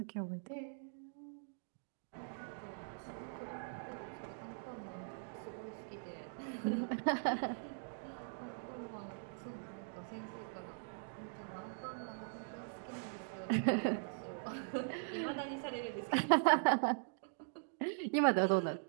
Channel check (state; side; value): silent; left; digital silence